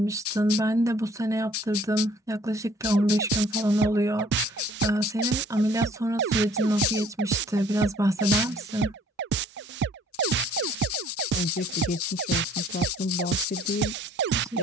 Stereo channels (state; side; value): normal; both; correlation 0.58